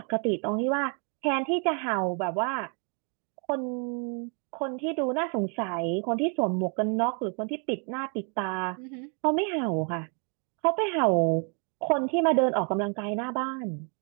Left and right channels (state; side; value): quieter; left; 38.8 dB